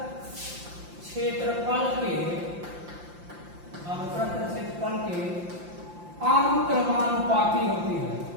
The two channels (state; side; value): late; left; 5.8 ms